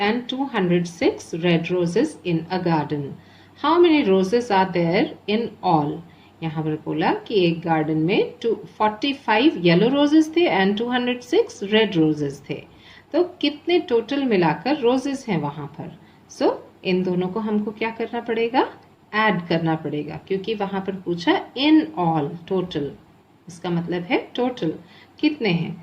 206 red roses in a garden. How many roses are there in all? यहाँ पर बोला कि एक garden में 45 yellow roses थे and 206 red roses थे, तो कितने टोटल मिलाकर रोजेस हैं वहां पर? सो इन दोनों को हमको क्या करना पड़ेगा? ऐड करना पड़ेगा, क्योंकि वहां पर पूछा इन ऑल टोटल, इसका मतलब है टोटल कितने हैं.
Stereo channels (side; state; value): both; identical; correlation 1.00